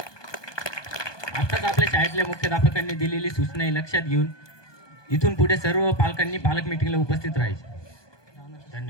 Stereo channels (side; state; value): right; late; 1.2 ms